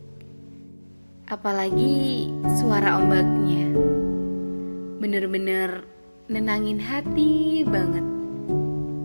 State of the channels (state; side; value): inverted; both; correlation -1.00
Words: apalagi suara ombaknya. Bener-bener nenangin hati banget.